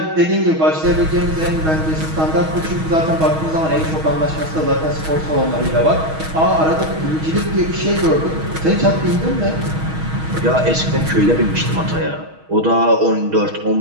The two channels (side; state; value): left; late; 6.3 ms